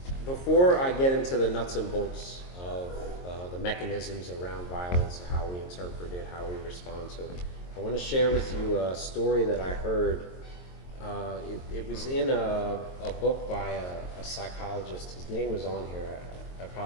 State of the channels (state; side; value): late; right; 22 ms